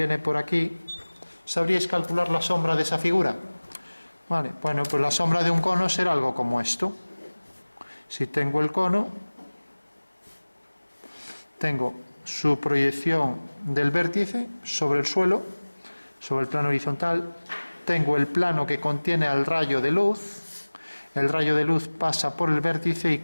por aquí. ¿Sabríais calcular la sombra de esa figura? Vale, bueno, pues la sombra de un cono será algo como esto. Si tengo el cono, tengo su proyección del vértice sobre el suelo, sobre el plano horizontal, tengo el plano que contiene al rayo de luz, el rayo de luz pasa por el vértice y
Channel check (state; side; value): inverted; both; correlation -1.00